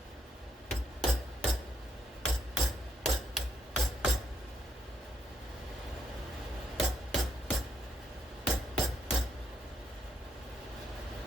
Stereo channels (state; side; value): normal; both; correlation 0.74